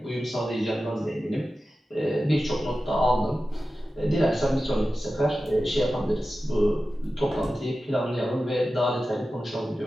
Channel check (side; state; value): both; normal; correlation 0.94